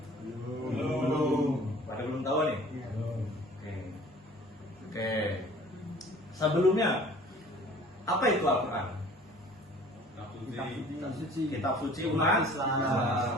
Belum. Pada belum tahu nih? Belum. Oke. Sebelumnya apa itu Al-Quran? Kitab suci umat Islam.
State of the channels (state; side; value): normal; both; correlation 0.49